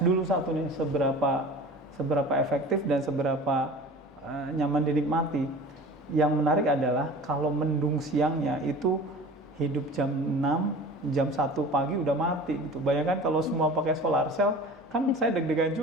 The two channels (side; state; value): both; normal; correlation 0.40